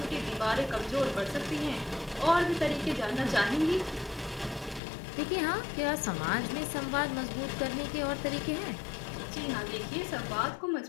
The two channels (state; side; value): drops out; right; at 4.8 s